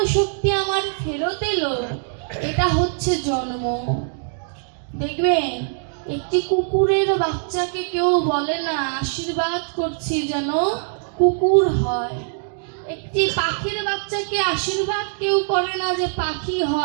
শক্তি আমার ফেরত এলো, এটা হচ্ছে জন্ম। দেখবেন একটি কুকুরের বাচ্চাকে কেউ বলে না আশীর্বাদ করছি যেন কুকুর হয়। একটি পাখির বাচ্চাকে আশীর্বাদ কেউ করে না যে পাখি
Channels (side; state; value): left; silent; 64 dB below the other